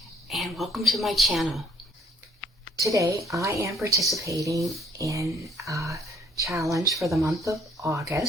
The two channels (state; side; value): normal; both; correlation 0.63